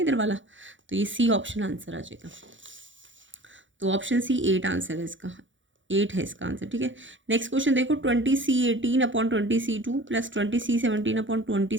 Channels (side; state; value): left; late; 0.56 ms